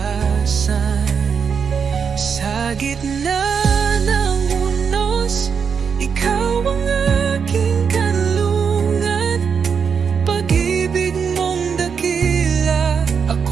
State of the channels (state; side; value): quieter; left; 6.4 dB